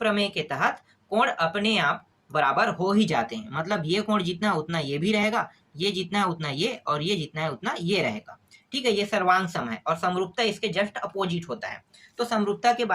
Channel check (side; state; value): both; identical; correlation 1.00